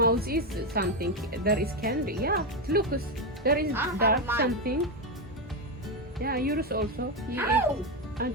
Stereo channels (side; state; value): both; normal; correlation 0.09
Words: is something. There is candy. Yeah, look, there is dark mine. something. Yeah, yours also. You Ow! ate. I